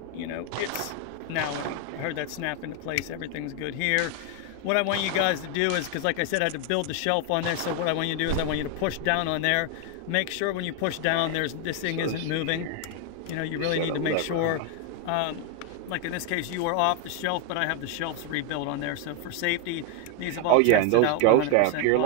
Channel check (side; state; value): both; different; correlation 0.01